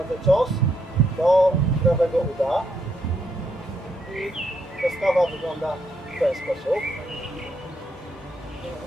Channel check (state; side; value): normal; both; correlation 0.76